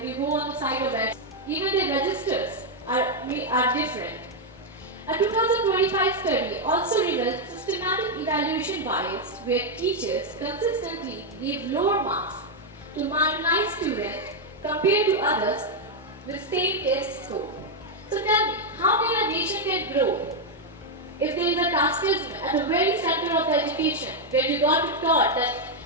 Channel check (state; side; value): normal; both; correlation 0.01